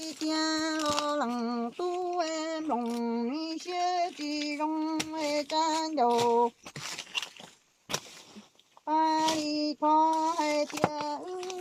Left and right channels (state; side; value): identical; both; correlation 1.00